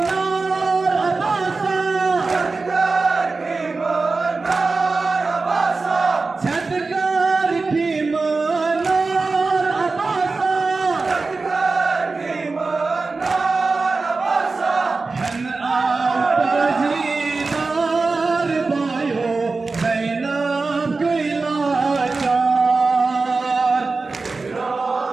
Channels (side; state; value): left; quieter; 3.9 dB